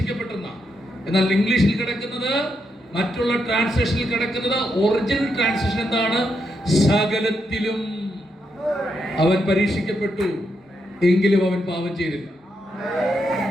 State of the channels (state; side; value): normal; both; correlation 0.81